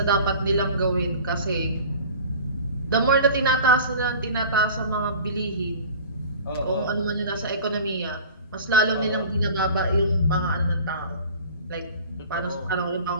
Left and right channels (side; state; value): both; inverted; correlation -0.41